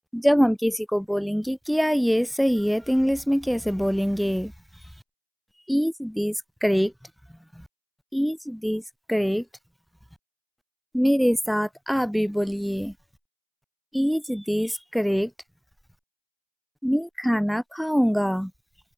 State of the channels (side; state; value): both; identical; correlation 1.00